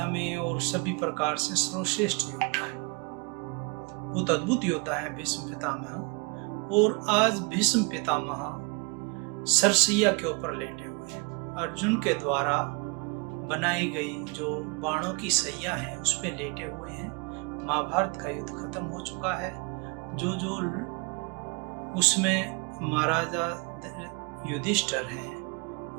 में और सभी प्रकार से सर्वश्रेष्ठ योद्धा है। बहुत अद्भुत योद्धा है भीष्म पितामह। और आज भीष्म पितामह सरसैया के ऊपर लेटे हुए हैं। अर्जुन के द्वारा बनाई गई जो बाणों की सैया है उस पे लेटे हुए हैं। महाभारत का युद्ध खत्म हो चुका है। जो उसमें महाराजा युधिष्ठिर हैं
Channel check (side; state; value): left; quieter; 30.8 dB